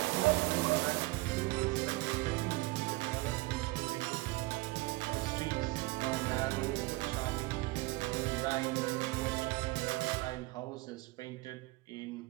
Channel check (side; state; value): left; quieter; 22.2 dB